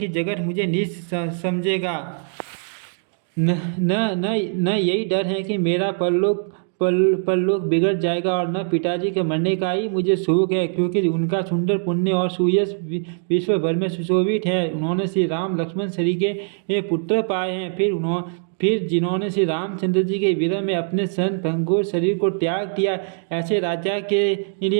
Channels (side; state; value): left; silent; 64 dB below the other